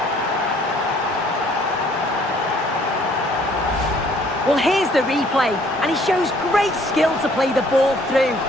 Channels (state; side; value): normal; both; correlation 0.60